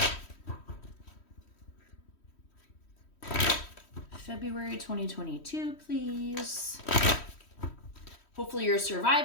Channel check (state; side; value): late; right; 3.1 ms